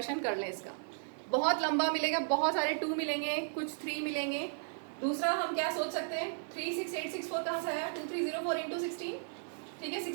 कर लें, इसका बहुत लंबा मिलेगा, बहुत सारे 2 मिलेंगे, कुछ 3 मिलेंगे। दूसरा हम क्या सोच सकते हैं, 36864 कहाँ से आया, 2304 इंटू 16, ठीक है।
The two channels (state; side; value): silent; left; digital silence